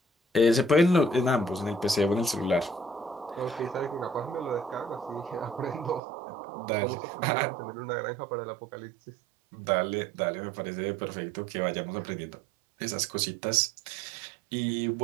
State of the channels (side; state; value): left; drops out; at 6.0 s